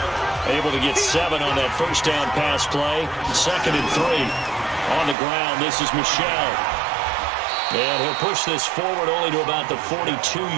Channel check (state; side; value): drops out; left; at 5.2 s